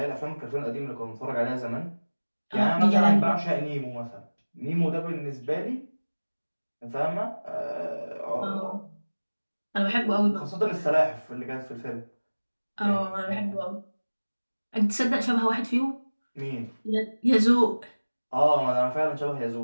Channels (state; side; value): inverted; both; correlation -1.00